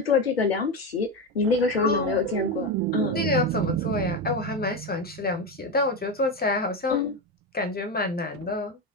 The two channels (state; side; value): normal; both; correlation 0.14